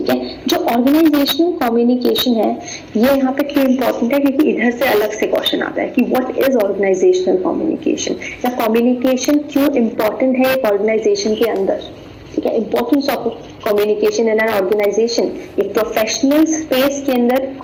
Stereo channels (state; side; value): identical; both; correlation 1.00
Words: है, जो ऑर्गेनाइजेशनल कम्युनिकेशन है ये यहाँ पे क्यों इंपॉर्टेंट है? क्योंकि इधर से अलग से क्वेश्चन आता है कि व्हाट इज ऑर्गेनाइजेशनल कम्युनिकेशन, या कम्युनिकेशन क्यों इंपॉर्टेंट है एक ऑर्गेनाइजेशन के अंदर। ठीक है, importance of communication in an organisation, एक प्रोफेशनल स्पेस के अंदर